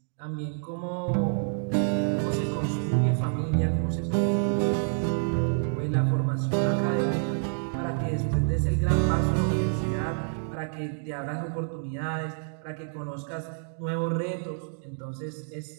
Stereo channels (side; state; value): left; silent; digital silence